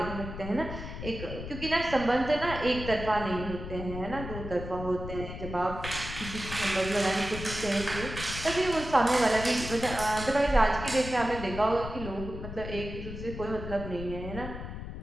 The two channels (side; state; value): left; noise; rumble, 8 dB below the sound